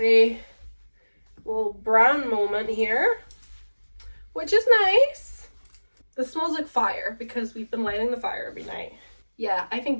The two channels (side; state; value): both; inverted; correlation -1.00